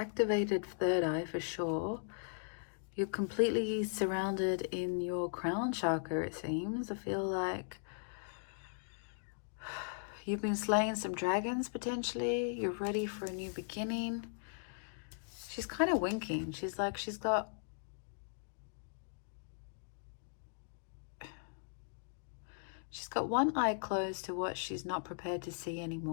third eye for sure. You're completely surrounded in your crown chakra, it seems. I feel like you've been slaying some dragons, potentially. You're ready for a new beginning. She's kind of winking. She's like, she's got one eye closed to what she's not prepared to see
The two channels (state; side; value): silent; right; digital silence